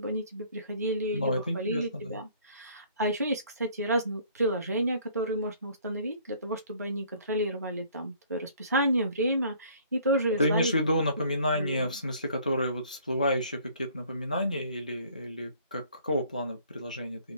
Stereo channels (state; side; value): inverted; both; correlation -0.57